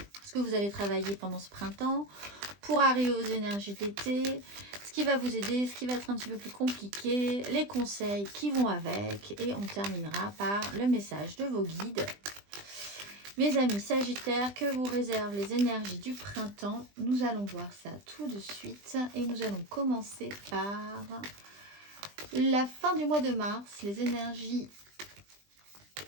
ce que vous allez travailler pendant ce printemps, pour arriver aux énergies d'été, ce qui va vous aider, ce qui va être un petit peu plus compliqué, les conseils qui vont avec, et on terminera par le message de vos guides. Mes amis Sagittaires, que vous réservent les énergies du printemps? Nous allons voir ça tout de suite et nous allons commencer par la fin du mois de mars, les énergies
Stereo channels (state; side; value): late; left; 20 ms